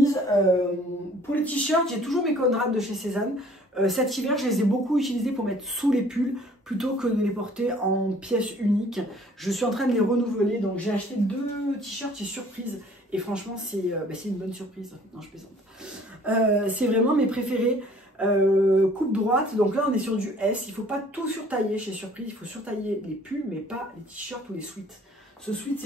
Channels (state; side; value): normal; both; correlation 0.55